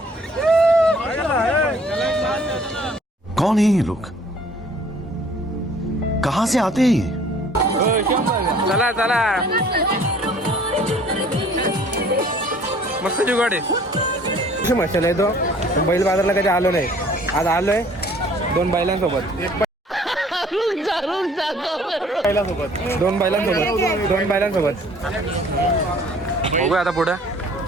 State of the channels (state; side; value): normal; both; correlation 0.55